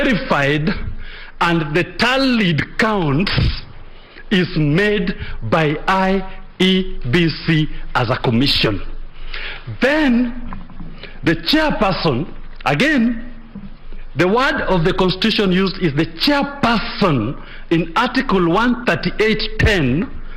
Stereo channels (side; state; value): both; identical; correlation 1.00